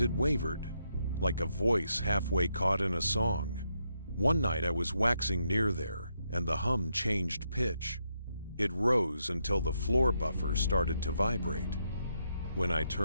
it wavered, like a voice halfway caught in a song. One night I was waxing near there, and the hum changed pitch. It rose until the floor buffer started to vibrate. When I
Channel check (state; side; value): inverted; both; correlation -0.80